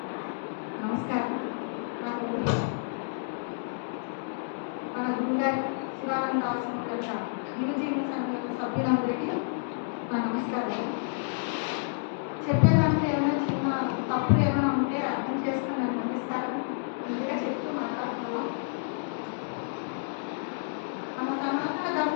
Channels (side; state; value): right; silent; digital silence